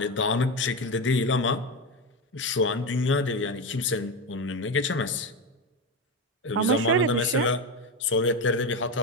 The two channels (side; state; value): both; normal; correlation 0.15